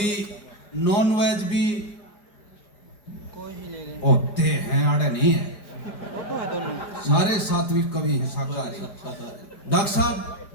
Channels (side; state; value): right; late; 5.0 ms